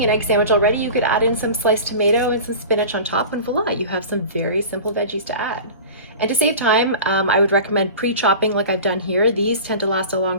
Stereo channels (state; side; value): inverted; both; correlation -0.36